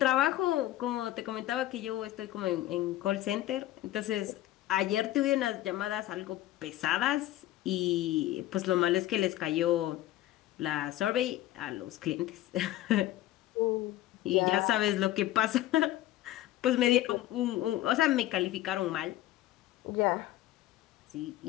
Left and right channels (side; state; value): right; quieter; 14.6 dB